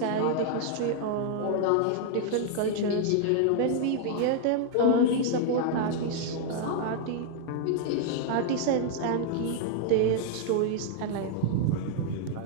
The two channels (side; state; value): both; different; correlation -0.01